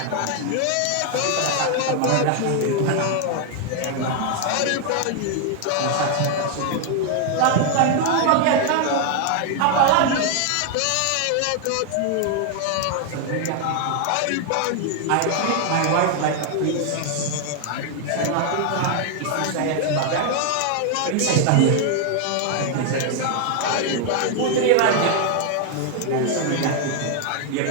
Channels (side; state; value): both; different; correlation 0.00